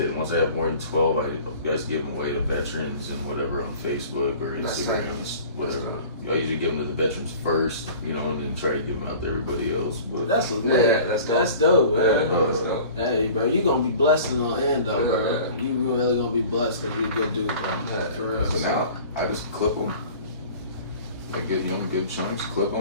Once I have more than 12, I guys give them away to veterans and whatever on Facebook or Instagram, whatever. I usually give them to the veterans first, you know, and then try to give them out to everybody else. But That's lit. That's dope, man. That's dope. Hey, bro, you gonna be blessed in the end, though, bro. You really gonna be blessed because you're a good dude, bro. For real. So now I just clip them. Like good, you know, good chunks. Clip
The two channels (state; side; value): inverted; both; correlation -0.44